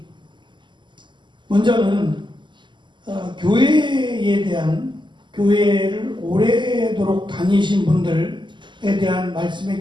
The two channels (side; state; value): left; late; 0.22 ms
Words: 먼저는 교회에 대한 교회를 오래도록 다니신 분들에 대한